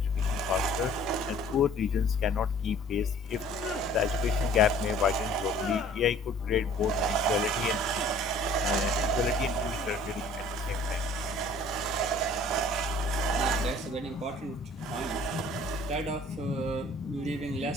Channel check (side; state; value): both; normal; correlation 0.52